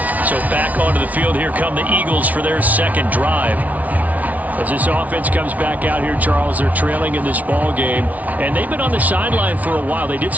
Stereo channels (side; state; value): left; late; 0.072 ms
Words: So back onto the field, here come the Eagles for their second drive. As this offense comes back out here, Charles, they're trailing in this ball game, and they've been on the sideline for a while. They did